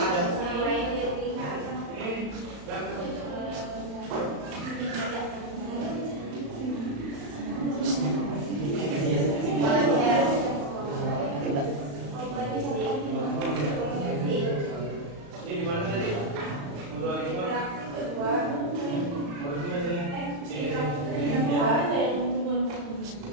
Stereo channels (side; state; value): left; late; 35 ms